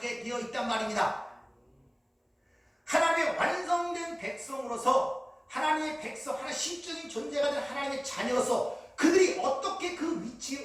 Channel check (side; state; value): both; identical; correlation 1.00